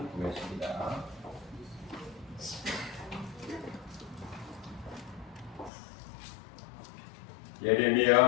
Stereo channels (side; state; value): right; drops out; at 5.7 s